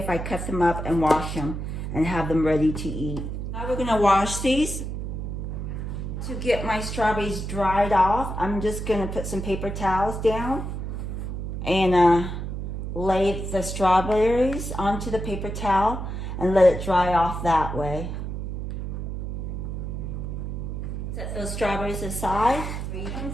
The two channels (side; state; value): right; noise; hum, 5 dB below the sound